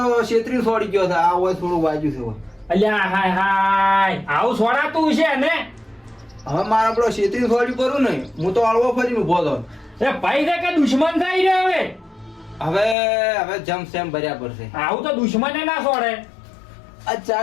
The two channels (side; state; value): right; drops out; at 13.0 s